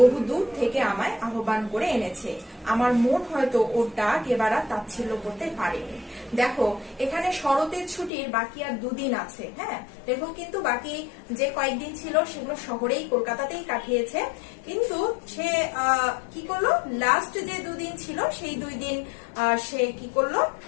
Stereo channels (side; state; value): right; drops out; at 8.1 s